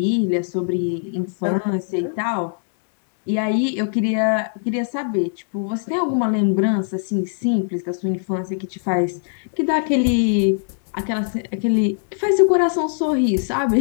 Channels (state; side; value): silent; right; digital silence